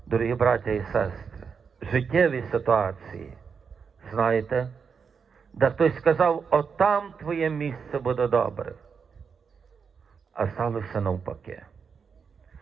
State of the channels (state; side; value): quieter; left; 6.0 dB